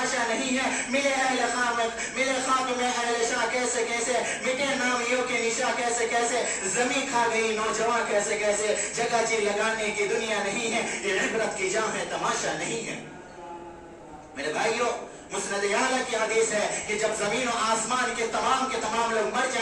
نہیں ہے. ملے اہل خامت، ملے خاتم اہل شاہ کیسے کیسے، مٹے نامیوں کے نشا کیسے کیسے، زمین کھا گئی نوجوان کیسے کیسے. جگہ جی لگانے کی دنیا نہیں ہے، یہ عبرت کی جا ہے، تماشا نہیں ہے. میرے بھائیوں، مسند اعلیٰ کی حدیث ہے کہ جب زمین و آسمان کے تمام لوگ مر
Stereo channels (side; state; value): both; identical; correlation 1.00